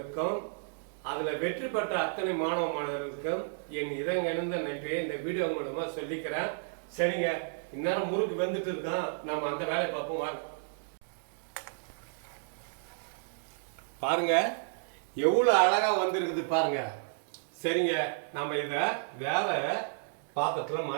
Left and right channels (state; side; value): silent; left; digital silence